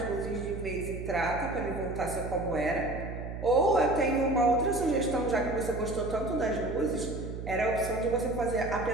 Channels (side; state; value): right; noise; hum, 7 dB below the sound